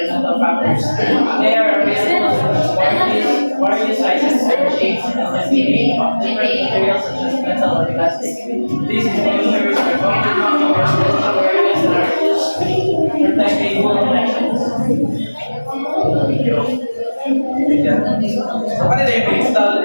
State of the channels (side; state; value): both; inverted; correlation -1.00